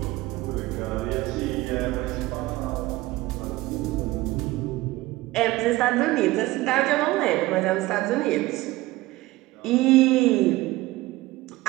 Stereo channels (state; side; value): quieter; left; 18.8 dB